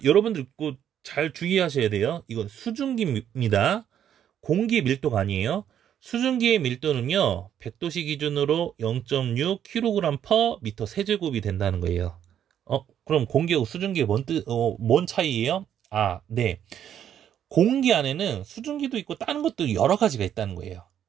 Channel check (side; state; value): left; quieter; 9.7 dB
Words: 여러분들 꼭 잘 주의하셔야 돼요. 이건 수증기입니다. 공기 밀도가 아니에요. 수증기의 밀도는요, 100도씨 기준으로 0.6kg/m 세제곱이 된다는 거예요. 그럼 공기하고 수증기의 뭔 차이예요? 네. 공기 안에는 수증기도 있고 다른 것도 여러 가지가 있다는 거예요.